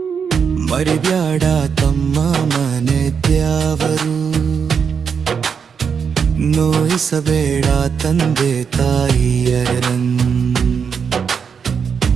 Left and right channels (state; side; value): quieter; left; 6.6 dB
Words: ಮರಿಬ್ಯಾಡ ತಮ್ಮ ಮನೆ ದ್ಯಾವರು, ನೋಯಿಸಬೇಡ ತಂದೆ ತಾಯಿಯರನ್ನು.